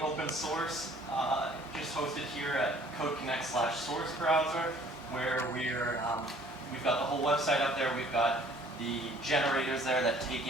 open source, just hosted here at CodeConnect/Source Browser, where we've got the whole website up there. We've got the generators there that take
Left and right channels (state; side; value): normal; both; correlation 0.55